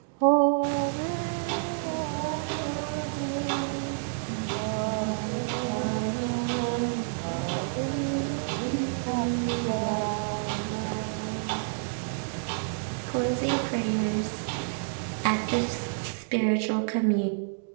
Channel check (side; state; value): left; silent; digital silence